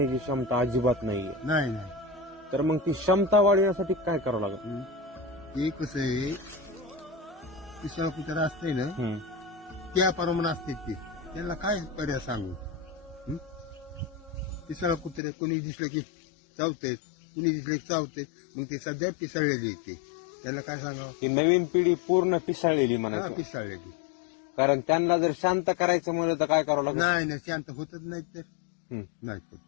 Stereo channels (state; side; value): drops out; right; at 15.2 s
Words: क्षमता अजिबात नाहीये. नाही नाही तर मग ती क्षमता वाढवण्यासाठी काय करावं लागेल? ते कसं आहे, तिसरा कुत्रा असते ना त्या प्रमाणे असते ते, त्यांना काय पर्याय सांगू. तिसरा कुत्रे कोणी दिसलं की चावतेत, कुणी दिसलं की चावतेत, मग ते सध्या पिसाळलेली येते, त्याला काय सांगावं. की नवीन पिढी पूर्ण पिसाळलेली म्हणायचं. पिसाळलेली. कारण त्यांना जर शांत करायचं म्हणलं तर काय करावं लागेल? नाही नाही, शांत होतच नाही तर नाही होत